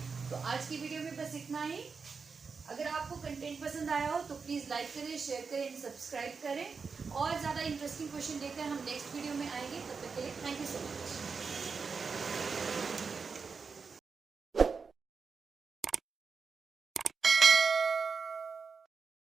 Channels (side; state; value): left; quieter; 5.2 dB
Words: तो आज की वीडियो में बस इतना ही। अगर आपको कंटेंट पसंद आया हो तो प्लीज़ लाइक करें, शेयर करें, सब्सक्राइब करें। और ज़्यादा इंटरेस्टिंग क्वेश्चन लेकर हम नेक्स्ट वीडियो में आएंगे। तब तक के लिए थैंक यू सो मच।